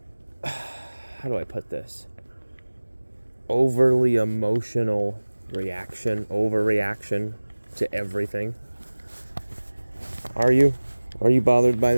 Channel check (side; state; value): both; inverted; correlation -1.00